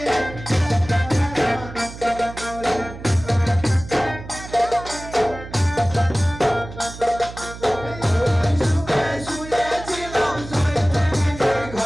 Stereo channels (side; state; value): right; noise; hum, 13 dB below the sound